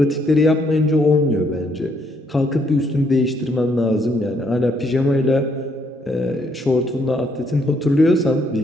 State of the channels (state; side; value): normal; both; correlation 0.71